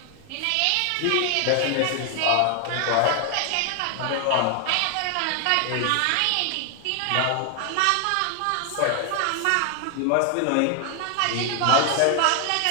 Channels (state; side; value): different; both; correlation 0.00